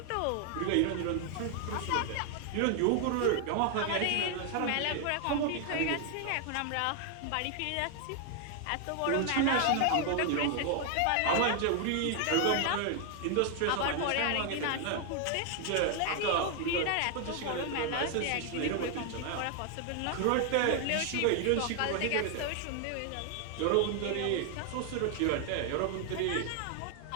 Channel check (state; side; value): different; both; correlation 0.00